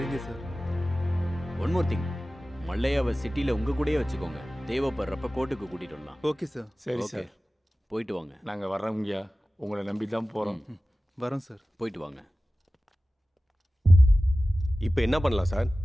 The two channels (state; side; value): normal; both; correlation 0.96